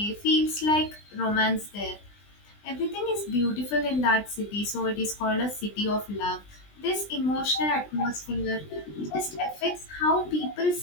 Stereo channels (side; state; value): right; late; 20 ms